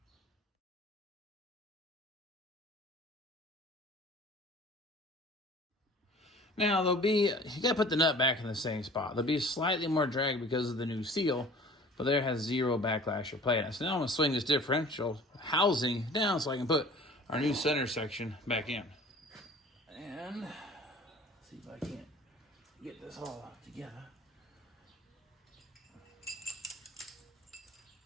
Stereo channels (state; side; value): normal; both; correlation 0.46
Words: Now there'll be, you gotta put the nut back in the same spot. There'll be slightly more drag because of the new seal, but there has zero backlash or play. So now I'm gonna swing this differential housing down so I can put our new center section back in. And let's see if I can't get this all together.